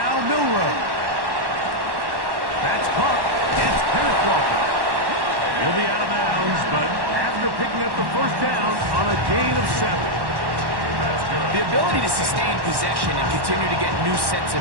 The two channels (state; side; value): late; left; 1.1 ms